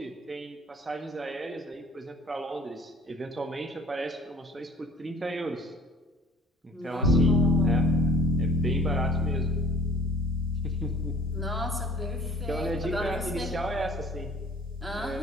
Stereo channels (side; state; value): both; normal; correlation 0.51